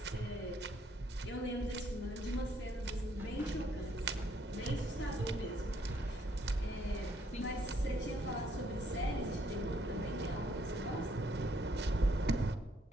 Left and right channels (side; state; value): both; normal; correlation 0.69